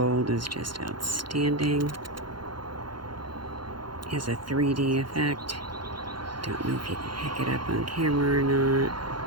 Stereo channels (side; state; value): left; late; 0.72 ms